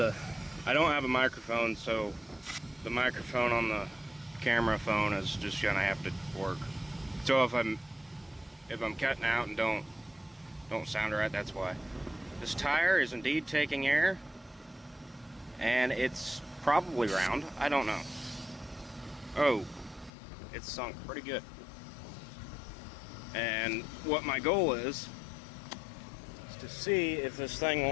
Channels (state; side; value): drops out; right; at 20.1 s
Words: don't have a microphone, so the microphone on the camera phone is just gonna have to work. So if I'm cutting out and don't sound right, that's why. This tire is indeed taking air, and it's probably round. I don't know. Oh, it's sunk pretty good. And what my goal is to see if this thing